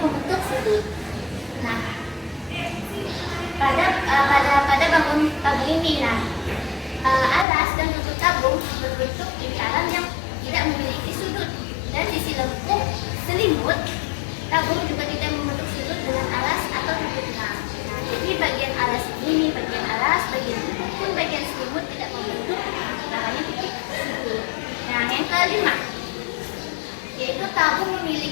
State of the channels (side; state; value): right; drops out; at 7.5 s